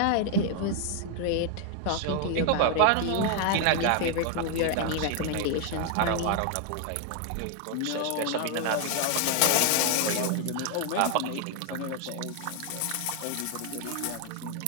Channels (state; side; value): different; both; correlation 0.00